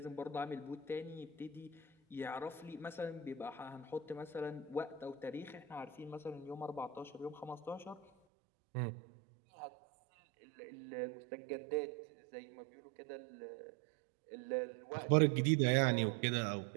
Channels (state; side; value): drops out; left; at 8.1 s